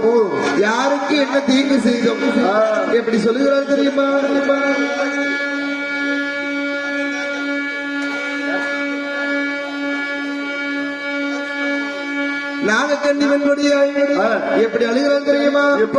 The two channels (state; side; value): identical; both; correlation 1.00